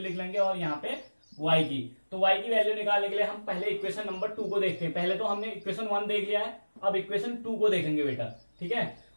लेंगे और यहाँ पे y की, तो y की वैल्यू निकालने के लिए हम पहले इक्वेशन नंबर 2 को देखते हैं। पहले तो हमने इक्वेशन 1 देख लिया है, अब इक्वेशन 2 को देखेंगे बेटा। ठीक है,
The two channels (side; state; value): both; inverted; correlation -1.00